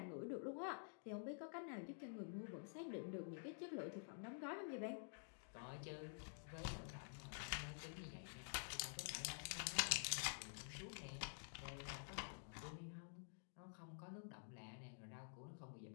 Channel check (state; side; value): silent; right; digital silence